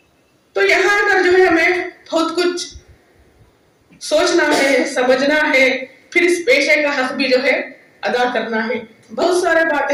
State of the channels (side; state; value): both; identical; correlation 1.00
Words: तो यहाँ आकर जो है हमें बहुत कुछ सोचना है, समझना है, फिर इस पेशे का हक भी जो है अदा करना है। बहुत सारे बातें